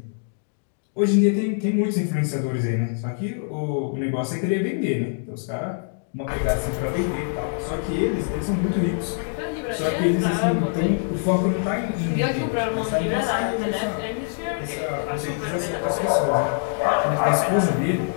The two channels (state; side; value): silent; right; 62 dB below the other